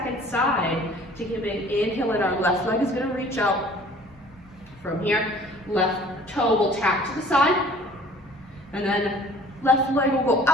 side. Taking a big inhale, and our left leg is going to reach out. From here, left toe will tap to the side, and then left leg will go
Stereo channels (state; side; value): normal; both; correlation 0.51